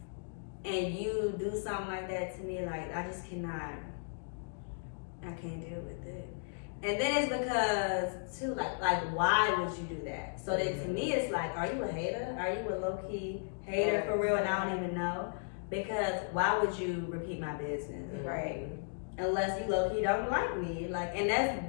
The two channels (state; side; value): silent; right; digital silence